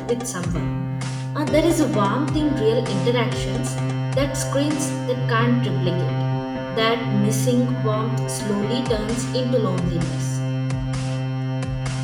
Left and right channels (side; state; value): both; identical; correlation 1.00